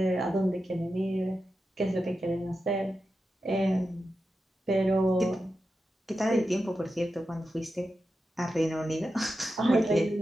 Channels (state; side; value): normal; both; correlation 0.90